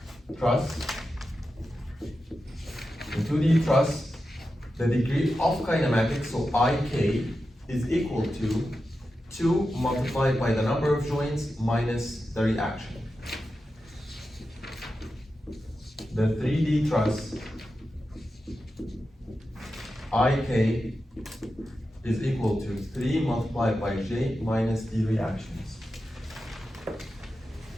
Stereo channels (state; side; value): normal; both; correlation 0.91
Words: truss. In 2D truss, the degree of kinematics, so IK, is equal to 2 multiplied by the number of joints minus the reaction. The 3D truss, IK is equal to 3 multiplied by J minus the reactions.